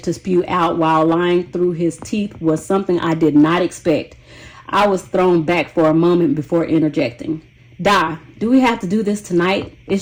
to spew out while lying through his teeth was something I did not expect. I was thrown back for a moment before interjecting. Do we have to do this tonight?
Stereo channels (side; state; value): both; identical; correlation 1.00